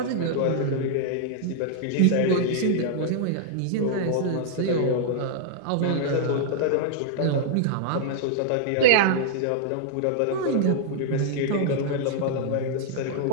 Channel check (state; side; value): different; both; correlation -0.01